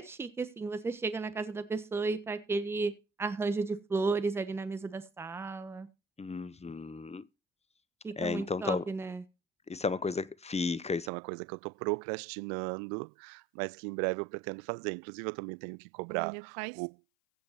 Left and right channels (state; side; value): drops out; left; at 11.1 s